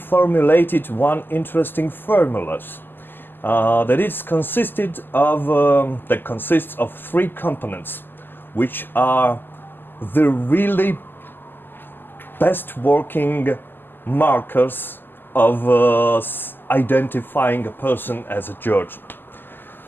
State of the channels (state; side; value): late; right; 0.094 ms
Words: one interesting formula that consists of three components, which are the really best working markers of identifying a person as a Georgian.